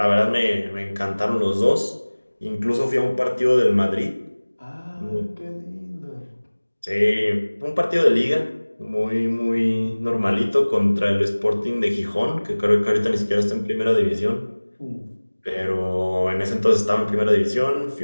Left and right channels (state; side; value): inverted; both; correlation -1.00